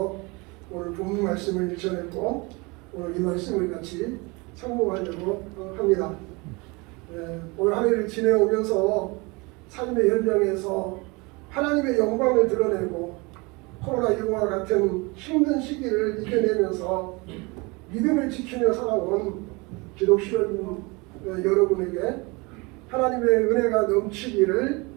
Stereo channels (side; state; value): left; quieter; 26.6 dB